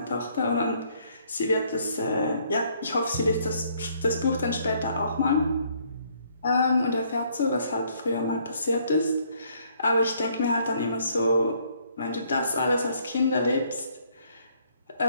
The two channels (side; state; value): both; inverted; correlation -0.66